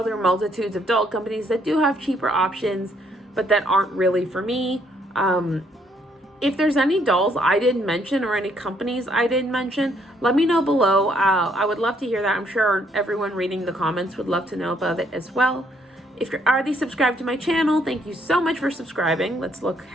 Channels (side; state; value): both; normal; correlation 0.69